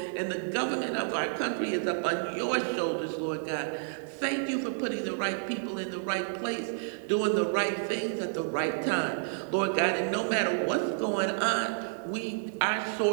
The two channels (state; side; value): silent; left; 58 dB below the other